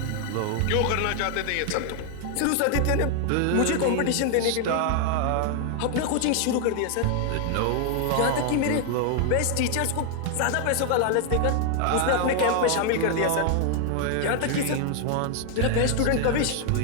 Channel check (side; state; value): both; different; correlation 0.00